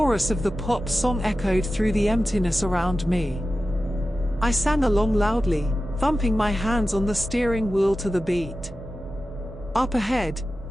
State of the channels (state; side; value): normal; both; correlation 0.94